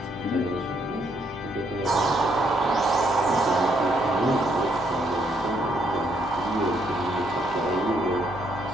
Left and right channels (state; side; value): normal; both; correlation 0.73